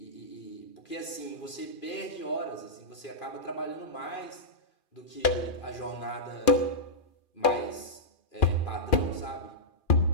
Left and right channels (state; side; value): late; right; 2.4 ms